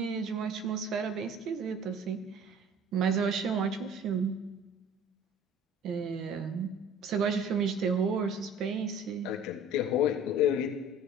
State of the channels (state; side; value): normal; both; correlation 0.47